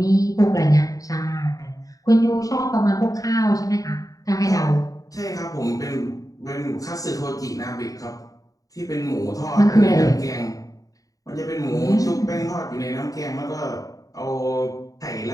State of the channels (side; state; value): right; late; 0.17 ms